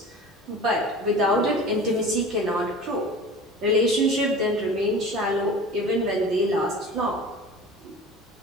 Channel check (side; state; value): both; normal; correlation 0.38